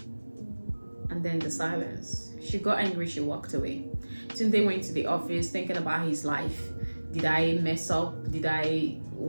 And then the silence. She got angry, she walked away. Tunde went to the office thinking about his life. Did I mess up? Did I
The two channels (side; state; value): both; inverted; correlation -1.00